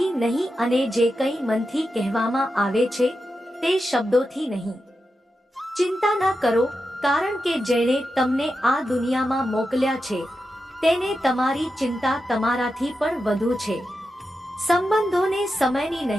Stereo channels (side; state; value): both; normal; correlation 0.89